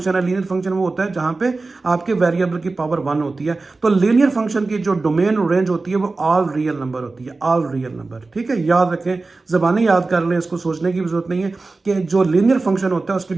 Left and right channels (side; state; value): left; quieter; 3.6 dB